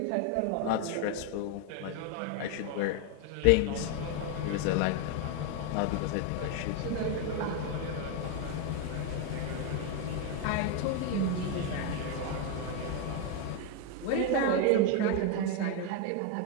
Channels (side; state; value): both; different; correlation 0.01